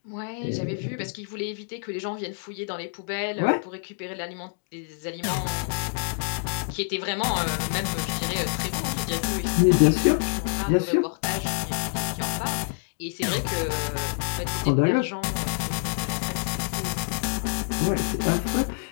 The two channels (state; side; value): silent; right; digital silence